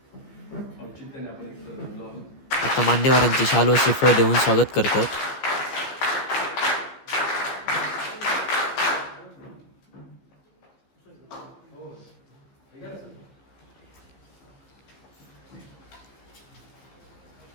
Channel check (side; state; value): right; late; 15 ms